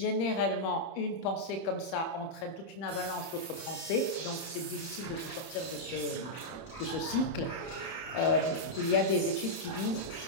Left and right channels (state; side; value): late; right; 31 ms